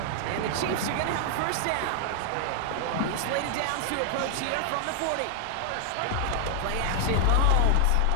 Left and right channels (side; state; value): both; different; correlation 0.00